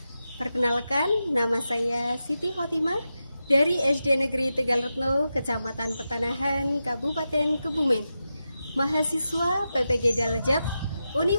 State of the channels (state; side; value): inverted; both; correlation -0.90